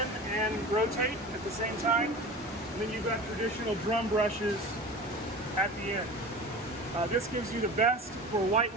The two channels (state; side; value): normal; both; correlation 0.35